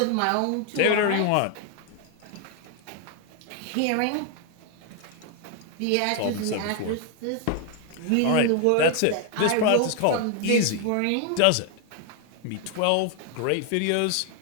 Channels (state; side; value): different; both; correlation 0.00